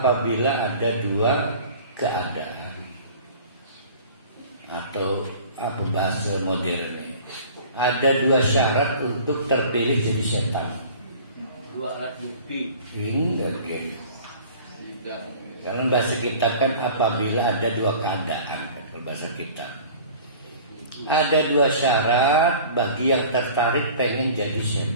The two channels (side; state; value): both; inverted; correlation -0.45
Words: ada dua keadaan, atau apa bahasa modernnya, ada dua syarat untuk terpilih jadi setan. Dua alat bukti. Enggak gitu. Karena bahasa kita kan apabila ada dua keadaan, kalau bahasa kita. Ada dua syarat bagi yang tertarik pengen jadi